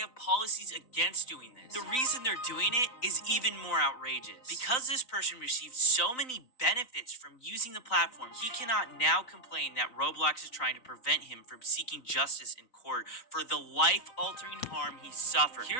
policies against doing this. The reason they're doing it is even more outrageous. Because this person received so many benefits from using the platform, he cannot now complain that Roblox is trying to prevent him from seeking justice in court for the life-altering harm he suffered.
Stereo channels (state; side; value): late; right; 3.9 ms